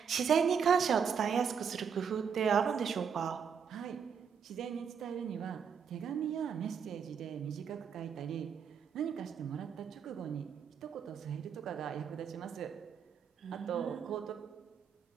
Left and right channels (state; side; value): quieter; left; 7.0 dB